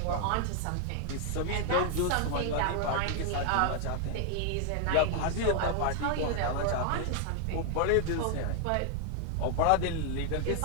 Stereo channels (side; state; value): both; different; correlation 0.00